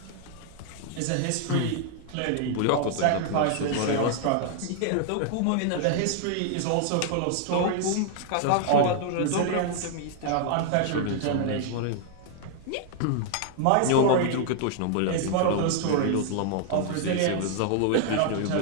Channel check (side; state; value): both; different; correlation 0.00